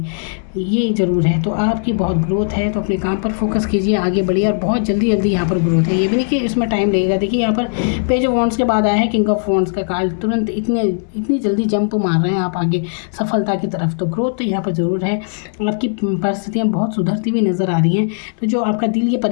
ये ज़रूर है। तो आपकी बहुत ग्रोथ है, तो अपने काम पर फोकस कीजिए, आगे बढ़िए, और बहुत जल्दी जल्दी यहाँ पर ग्रोथ है। ये भी नहीं कि इसमें टाइम लगेगा। देखिए यहाँ पर पेज ऑफ वॉन्ड्स के बाद आया है किंग ऑफ वॉन्ड्स का कार्ड, तुरंत इतनी जल्दी जंप मार रहे हैं आप आगे सफलता की तरफ। तो ग्रोथ तो यहाँ पर ज़रूर है। आपकी परिस्थितियाँ बहुत सुधरती हुई नज़र आ रही हैं। तो जो आपका दिल ये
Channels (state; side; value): silent; right; 67 dB below the other